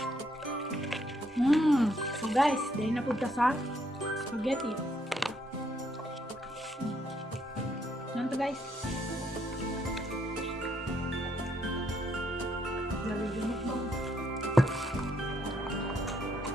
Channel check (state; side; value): normal; both; correlation 0.73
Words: So guys, dahil na punta sa spaghetti. Yan to guys. Yan